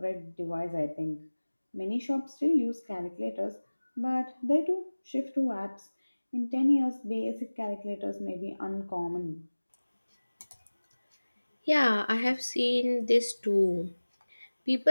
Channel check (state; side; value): inverted; both; correlation -1.00